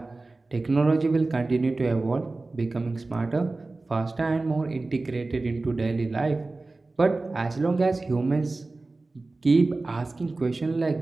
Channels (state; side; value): quieter; left; 3.3 dB